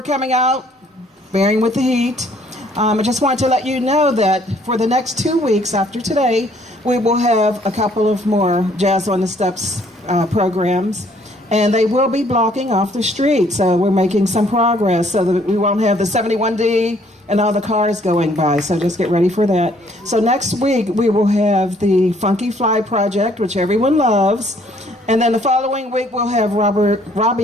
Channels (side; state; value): both; normal; correlation 0.63